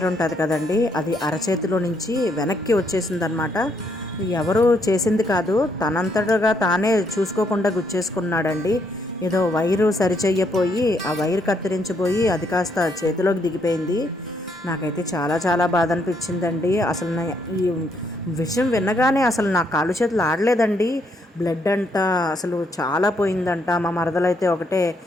ఉంటుంది కదండి, అది అరచేతిలో నుంచి వెనక్కి వచ్చేసిందనమాట. ఎవరు చేసింది కాదు, తనంతటగా తానే చూసుకోకుండా గుచ్చేసుకున్నాడండి. ఏదో వైరు సరిచెయ్యపోయి ఆ వైరు కత్తిరించిపోయి అది కాస్త చేతిలోకి దిగిపోయింది. నాకైతే చాలా చాలా బాధ అనిపించిందండి. అసలు ఈ విషయం వినగానే అసలు నా కాళ్ళు చేతులు ఆడలేదండి. బ్లడ్ అంట అసలు చాలా పోయిందంట. మా మరదలైతే ఒకటే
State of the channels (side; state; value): both; normal; correlation 0.74